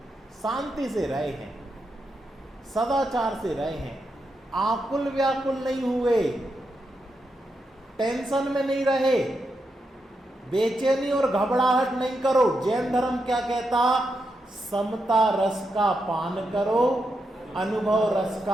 शांति से रहे हैं, सदाचार से रहे हैं, आकुल व्याकुल नहीं हुए, टेंशन में नहीं रहे, बेचैनी और घबराहट नहीं करो। जैन धर्म क्या कहता, समता रस का पान करो, अनुभव रस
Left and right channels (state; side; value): normal; both; correlation 0.84